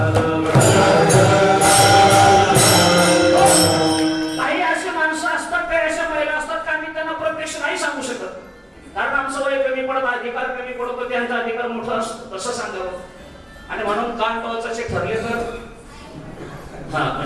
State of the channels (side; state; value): both; identical; correlation 1.00